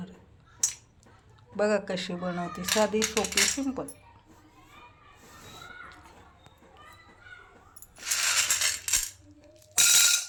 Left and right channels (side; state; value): both; identical; correlation 1.00